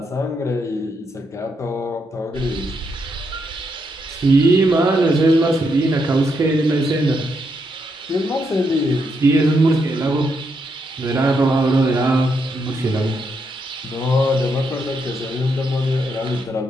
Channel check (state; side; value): normal; both; correlation 0.79